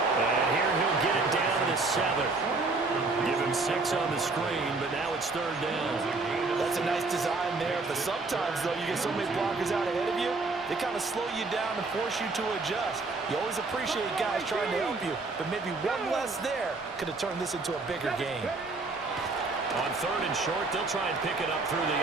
And here he'll get it down to the 7. Give him 6 on the screen, but now it's third down. That's a nice design there, but sometimes, though, you get so many blockers out ahead of you, they kind of slow you down and force you to adjust. You always appreciate guys trying to help you, but maybe one less there could have turned this into a bigger game. On third and short, they'll try and pick it up through the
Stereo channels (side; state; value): left; quieter; 3.6 dB